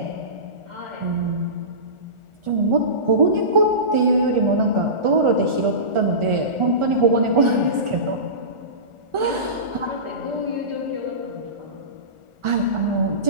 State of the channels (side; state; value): left; late; 1.4 ms